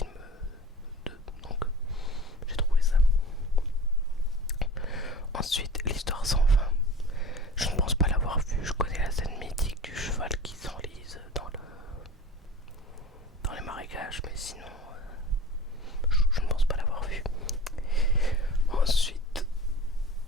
d'eux, donc j'ai trouvé ça. Ensuite, l'histoire sans fin. Je ne pense pas l'avoir vu, je connais la scène mythique du cheval qui s'enlise dans les marécages, mais sinon, je ne pense pas l'avoir vu. Ensuite,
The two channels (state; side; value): normal; both; correlation 0.38